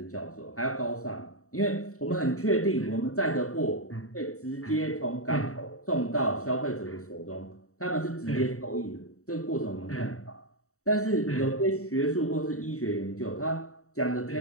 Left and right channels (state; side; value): late; right; 0.64 ms